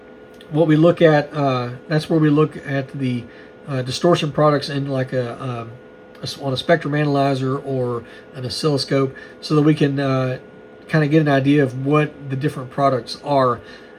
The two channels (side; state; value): both; identical; correlation 1.00